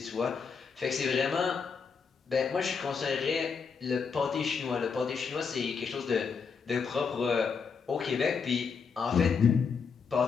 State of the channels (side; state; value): right; quieter; 5.7 dB